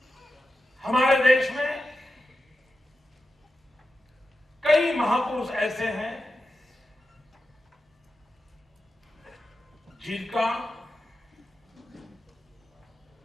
हमारे देश में कई महापुरुष ऐसे हैं जिनका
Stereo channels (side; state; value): both; normal; correlation 0.91